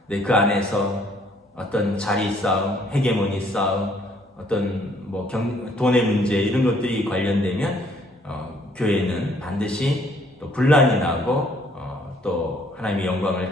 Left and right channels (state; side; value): normal; both; correlation 0.63